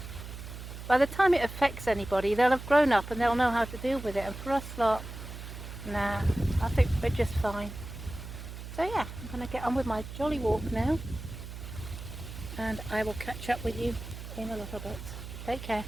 By the time it affects anybody, they'll have grown up and they'll know how to deal with it. And for us lot, nah, I think we're just fine. So yeah, I'm going to get on with my jolly walk now, and I will catch up with you in a little bit. Take care.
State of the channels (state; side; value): noise; right; hum, 10 dB below the sound